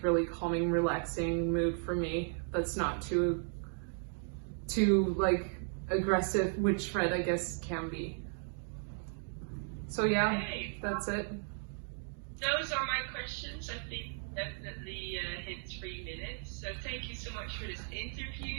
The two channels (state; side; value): silent; left; 54 dB below the other